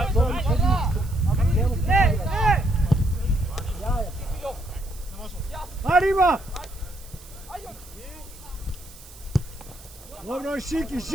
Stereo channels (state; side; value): noise; right; hiss, 21 dB below the sound